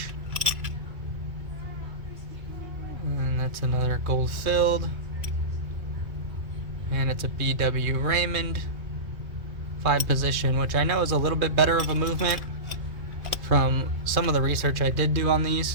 And that's another gold filled. And it's a BW Raymond 5 position, which I know is a little bit better of a movement from some of the research I did do on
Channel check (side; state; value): left; late; 2.4 ms